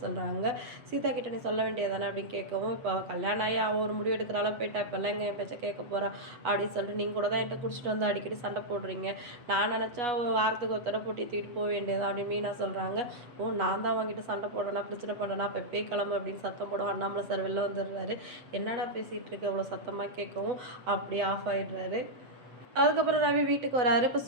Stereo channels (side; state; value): left; late; 8.0 ms